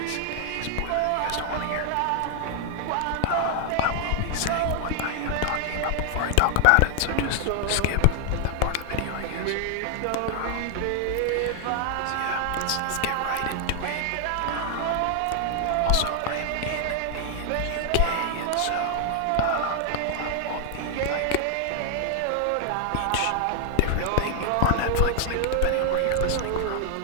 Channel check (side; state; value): both; different; correlation 0.00